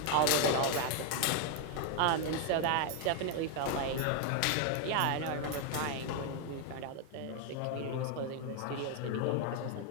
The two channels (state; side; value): different; both; correlation 0.01